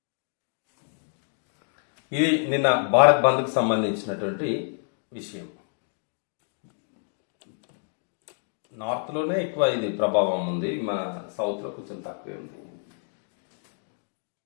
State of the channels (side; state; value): right; silent; digital silence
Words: ఇది నిన్న భారత్ బంద్కు సంబంధించినటువంటి విషయం. నార్త్ లోనే ఎక్కువ ఇది ప్రభావం ఉంది, మన సౌత్ లో కొంచెం తక్కువే ఉంది.